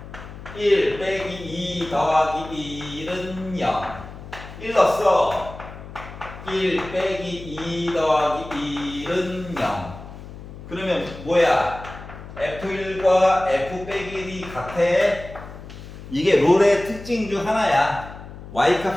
1 빼기 2 더하기 1은 0. 1 넣었어. 1 빼기 2 더하기 1은 0. 그러면 뭐야? F1과 F 빼기 1이 같아. 이게 롤의 특징 중 하나야.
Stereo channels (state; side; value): noise; left; hum, 14 dB below the sound